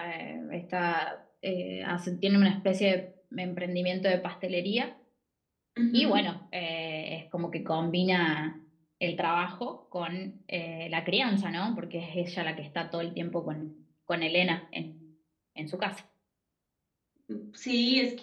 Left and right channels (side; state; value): both; identical; correlation 1.00